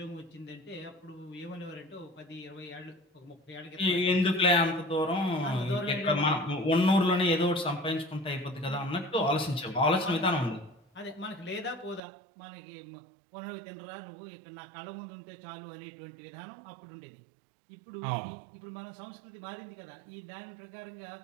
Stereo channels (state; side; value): drops out; left; at 12.0 s